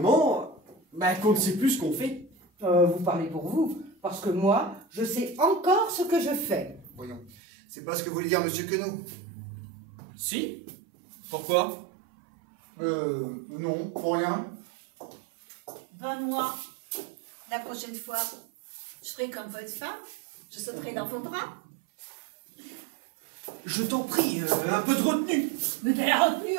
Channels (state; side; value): drops out; left; at 7.4 s